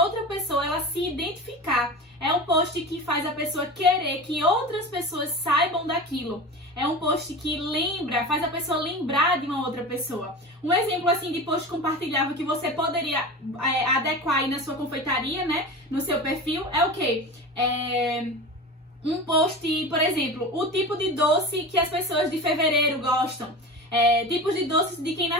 pessoa ela se identificar. É um post que faz a pessoa querer que outras pessoas saibam daquilo. É um post que faz a pessoa lembrar de uma outra pessoa. Um exemplo assim de post compartilhável que você poderia adequar aí na sua confeitaria, né? No seu perfil, é o quê? Um post, por exemplo, o tipo de doce que as pessoas de fevereiro gostam. Tipos de doces de quem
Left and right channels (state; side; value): normal; both; correlation 0.30